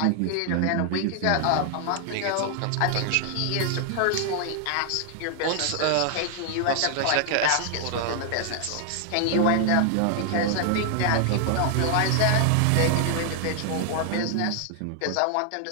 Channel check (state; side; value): different; both; correlation 0.00